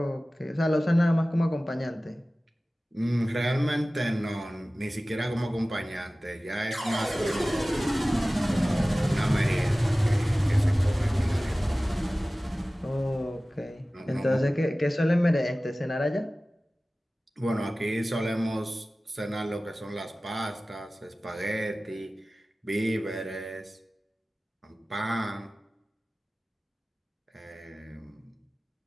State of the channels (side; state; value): both; normal; correlation 0.97